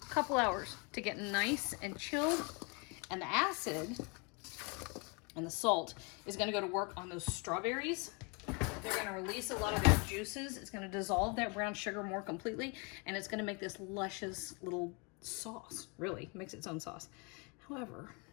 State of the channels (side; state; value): right; quieter; 31.8 dB